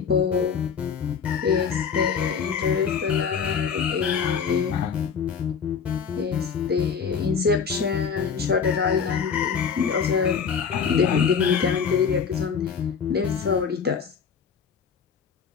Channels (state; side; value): quieter; right; 6.5 dB